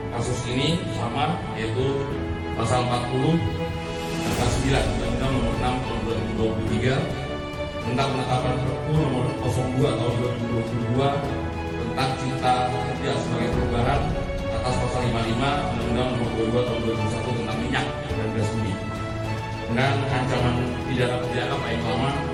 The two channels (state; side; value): identical; both; correlation 1.00